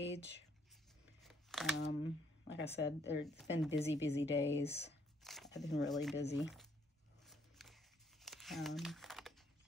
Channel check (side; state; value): both; normal; correlation 0.68